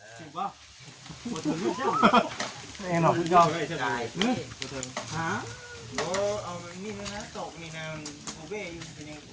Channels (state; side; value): identical; both; correlation 1.00